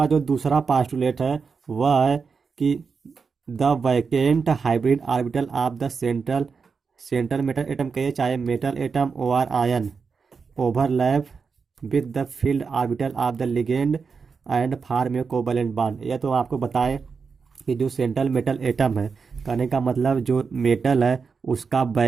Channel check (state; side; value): quieter; left; 5.3 dB